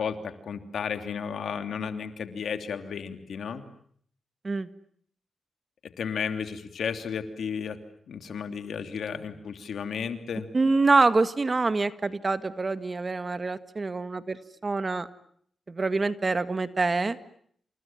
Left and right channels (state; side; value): normal; both; correlation 0.91